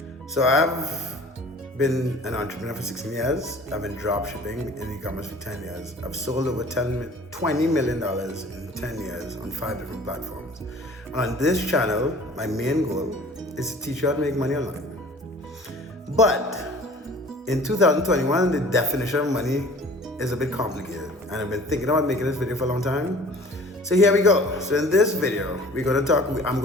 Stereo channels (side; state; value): both; normal; correlation 0.47